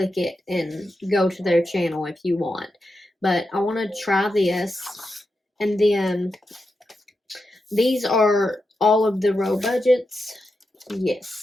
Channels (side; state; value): both; normal; correlation 0.88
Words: it and go to their channel if you want. But I want to try this. And then these are all of the Row Budgets.